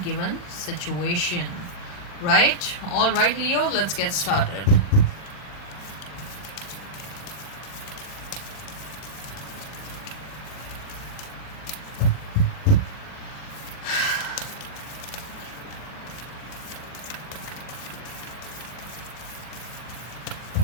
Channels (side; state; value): right; late; 40 ms